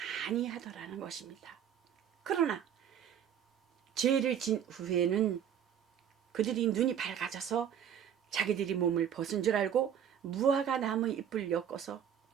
아니하더라는 것입니다. 그러나 죄를 진 후에는 그들이 눈이 밝아져서 자기들이 몸을 벗은 줄 알고 무화과 나무 잎을 엮어서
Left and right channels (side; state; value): left; quieter; 9.0 dB